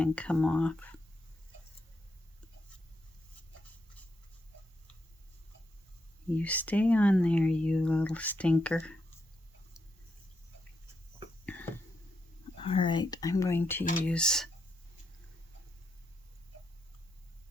come off. You stay on there, you little stinker. All right, I'm going to use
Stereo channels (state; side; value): normal; both; correlation 0.81